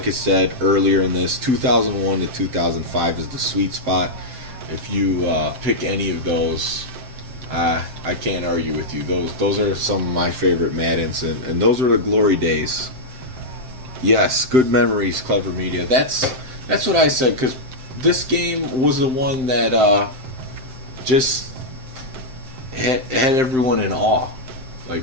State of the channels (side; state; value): left; late; 7.7 ms